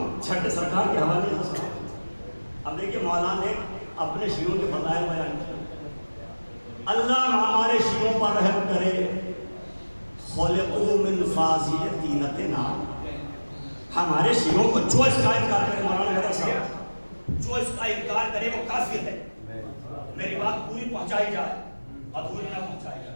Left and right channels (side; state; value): both; inverted; correlation -1.00